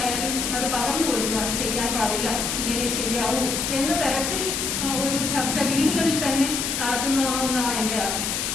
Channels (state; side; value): noise; left; hiss, 1 dB below the sound